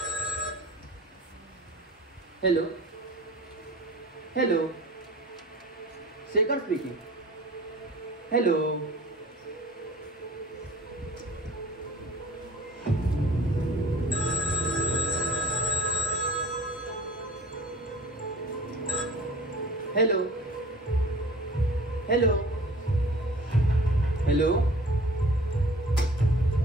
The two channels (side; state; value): both; normal; correlation 0.45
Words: Hello hello, Shekhar speaking. Hello. Hello hello hello.